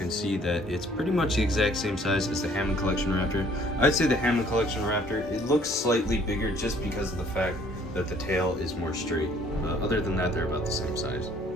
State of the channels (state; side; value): normal; both; correlation 0.59